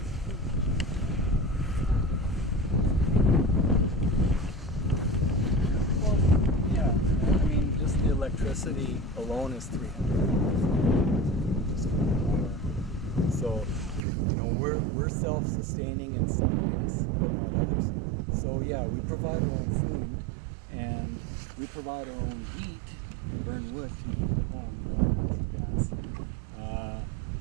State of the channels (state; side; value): drops out; left; at 14.0 s